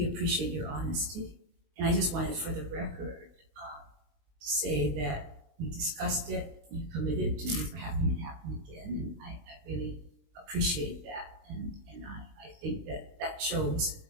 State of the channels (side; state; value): left; late; 20 ms